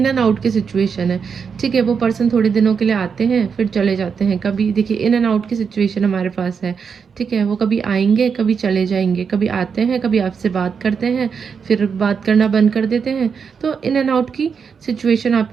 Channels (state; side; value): quieter; left; 6.2 dB